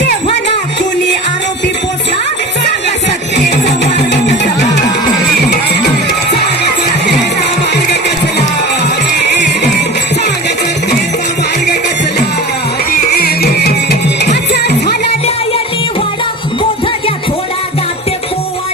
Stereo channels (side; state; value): both; normal; correlation 0.34